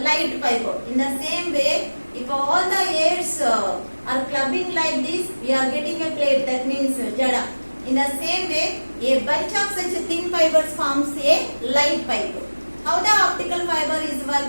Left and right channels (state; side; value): inverted; both; correlation -1.00